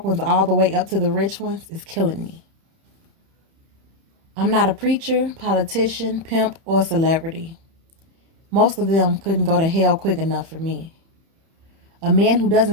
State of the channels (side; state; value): left; late; 31 ms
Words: ones all the way up to the rich ones, is killing me. I'm not a preacher, politician, pimp, or celebrity. Most of them couldn't go to hell quick enough for me. A man who